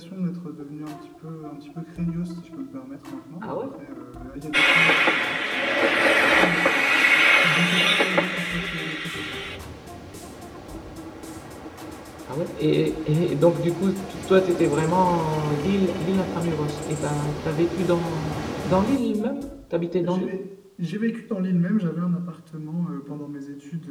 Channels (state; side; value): identical; both; correlation 1.00